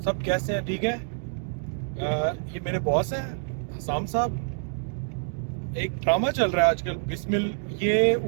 सब कैसे हैं? ठीक है। ये मेरे बॉस हैं हसाम साहब। एक ड्रामा चल रहा है आजकल बिस्मिल, ये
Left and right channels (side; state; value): left; silent; 60 dB below the other